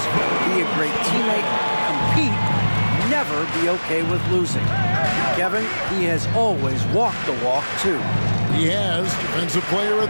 be a great teammate, compete, never be okay with losing. Kevin, he has always walked the walk, too. He has. Defensive Player of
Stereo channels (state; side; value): inverted; both; correlation -1.00